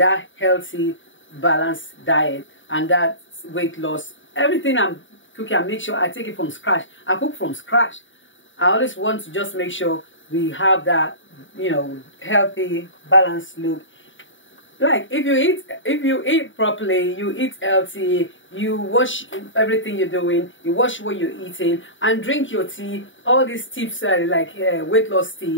healthy, balanced diet and that weight loss. Everything I'm cooking, I make sure I take it from scratch. I cook from scratch. I always want to just make sure we have that, healthy, balanced look. Like if you eat properly, you eat healthy, you watch everything you're doing, you watch what you're eating, and drink your tea. All these tips like weight loss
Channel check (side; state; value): right; late; 0.56 ms